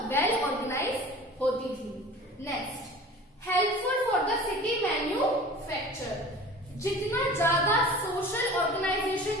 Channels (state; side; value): normal; both; correlation 0.40